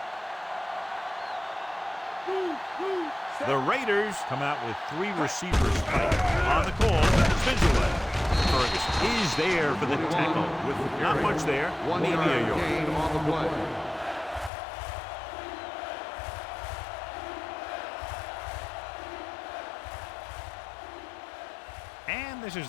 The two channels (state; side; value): drops out; right; at 14.5 s